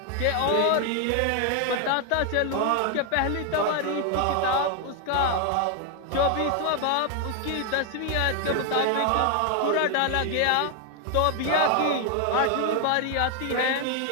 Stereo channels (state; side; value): different; both; correlation 0.00